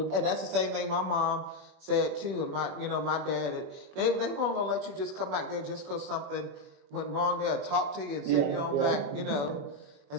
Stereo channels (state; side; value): late; left; 21 ms